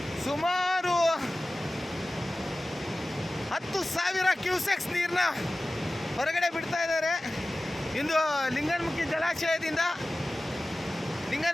ಸುಮಾರು 10,000 ಕ್ಯೂಸೆಕ್ಸ್ ನೀರನ್ನ ಹೊರಗಡೆ ಬಿಡ್ತಾ ಇದ್ದಾರೆ. ಇಂದು ಲಿಂಗನಮುಖಿ ಜಲಾಶಯದಿಂದ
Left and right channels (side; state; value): both; normal; correlation 0.96